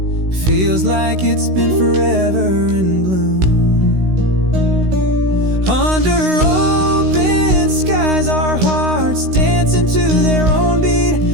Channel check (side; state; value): left; late; 16 ms